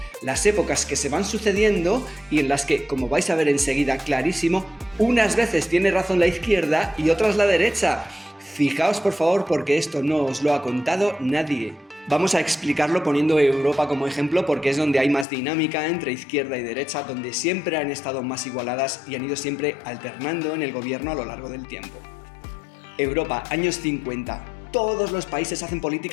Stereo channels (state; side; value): drops out; right; at 15.2 s